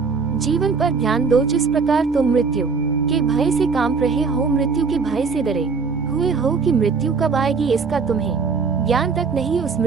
जीवन पर ध्यान दो जिस प्रकार तुम मृत्यु के भय से कांप रहे हो, मृत्यु के भय से डरे हुए हो कि मृत्यु कब आएगी इसका तुम्हें ज्ञान तक नहीं। उस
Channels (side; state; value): left; quieter; 5.0 dB